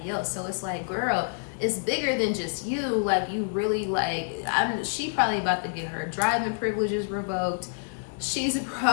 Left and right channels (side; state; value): right; silent; 60 dB below the other